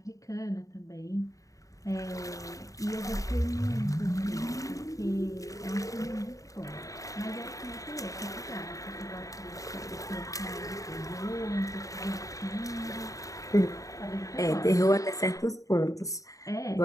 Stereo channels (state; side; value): late; right; 0.16 ms